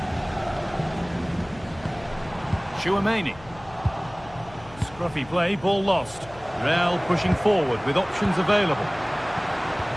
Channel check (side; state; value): left; noise; hum, 20 dB below the sound